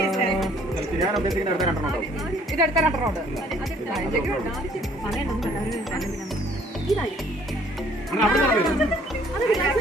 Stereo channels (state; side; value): normal; both; correlation 0.59